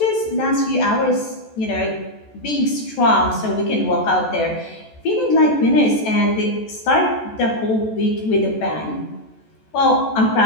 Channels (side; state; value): right; late; 14 ms